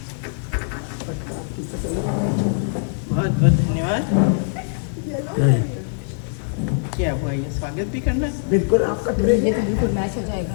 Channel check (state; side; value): silent; right; digital silence